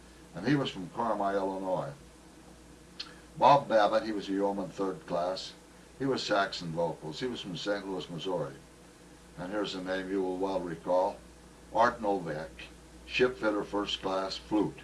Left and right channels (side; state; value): both; identical; correlation 1.00